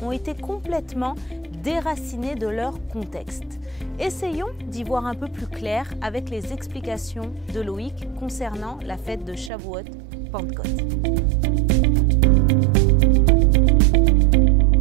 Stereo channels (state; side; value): drops out; left; at 9.5 s